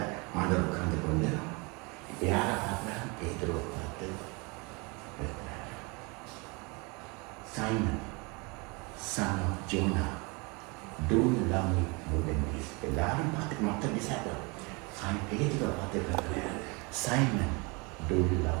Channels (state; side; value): quieter; left; 28.9 dB